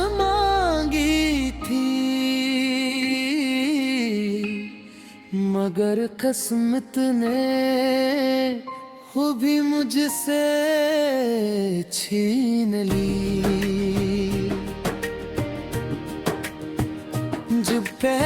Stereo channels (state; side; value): identical; both; correlation 1.00